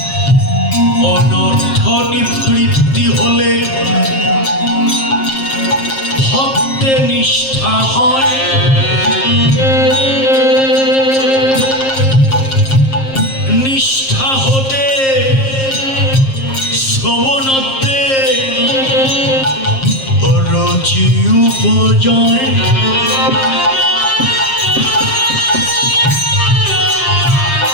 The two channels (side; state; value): right; late; 7.5 ms